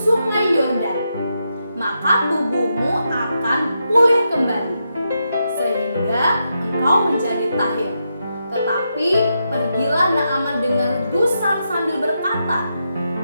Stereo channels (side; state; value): both; inverted; correlation -0.84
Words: Yordan, maka tubuhmu akan pulih kembali, sehingga engkau menjadi tahir." Tetapi pergilah Naaman dengan gusar sambil berkata,